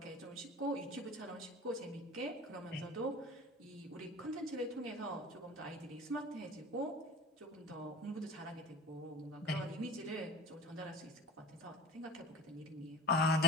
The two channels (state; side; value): normal; both; correlation 0.39